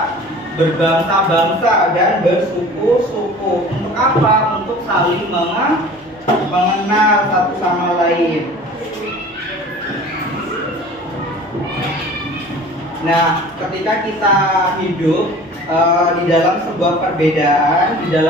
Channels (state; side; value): normal; both; correlation 0.43